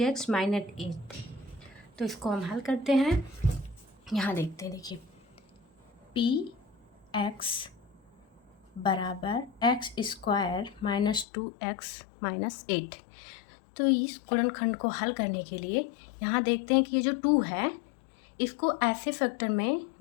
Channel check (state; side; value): drops out; right; at 11.2 s